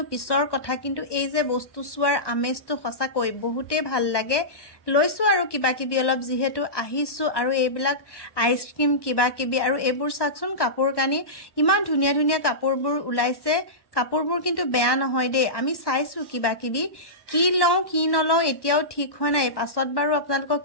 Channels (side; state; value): right; late; 1.1 ms